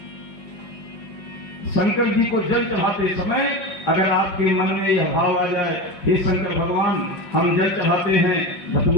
शंकर जी को जल चढ़ाते समय अगर आपके मन में यह भाव आ जाए, हे शंकर भगवान, हम जल चढ़ाते हैं,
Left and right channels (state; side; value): late; right; 5.6 ms